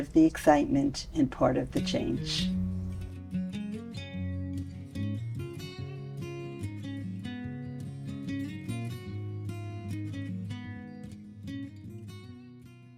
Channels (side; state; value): both; identical; correlation 1.00